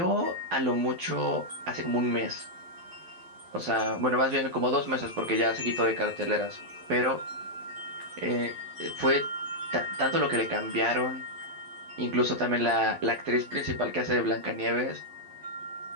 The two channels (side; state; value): left; late; 12 ms